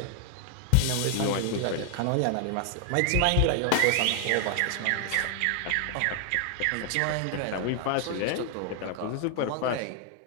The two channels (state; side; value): different; both; correlation 0.00